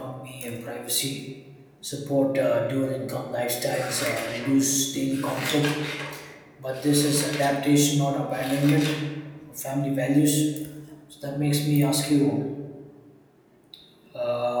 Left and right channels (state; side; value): identical; both; correlation 1.00